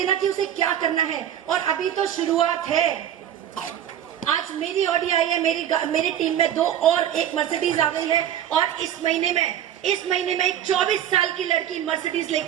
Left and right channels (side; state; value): left; quieter; 10.5 dB